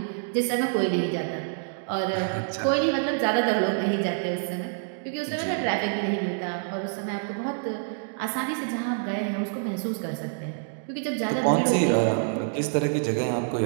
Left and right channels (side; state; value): left; silent; digital silence